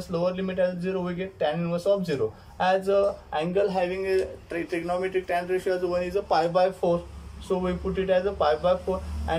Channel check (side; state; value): both; identical; correlation 1.00